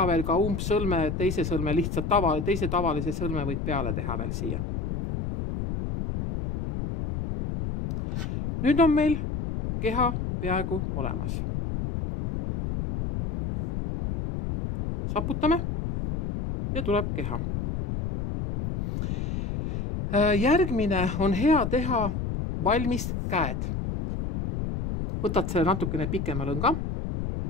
veel ka umbsõlme, teise sõlme lihtsalt teise tavalise sõlme võid peale teha veel siia. Nüüd on meil keha peaaegu olemas. Saputame ja tuleb keha. Järgmine on hea teha valmis käed. Võtad selle natukene pikema lõnga,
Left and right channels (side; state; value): left; noise; rumble, 3 dB below the sound